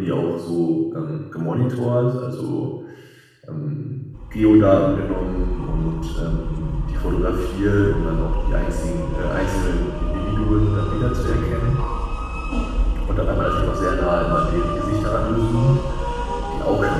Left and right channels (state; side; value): identical; both; correlation 1.00